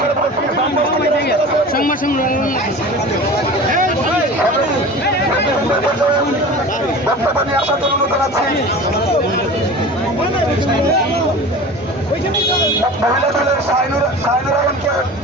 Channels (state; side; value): normal; both; correlation 0.36